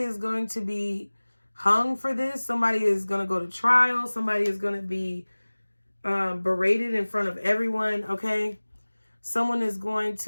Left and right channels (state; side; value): inverted; both; correlation -1.00